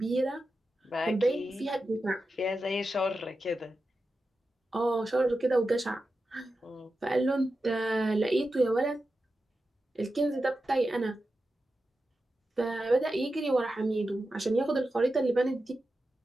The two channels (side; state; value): both; normal; correlation 0.91